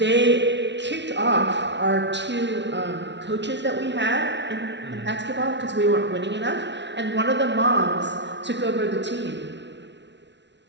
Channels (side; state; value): left; late; 0.51 ms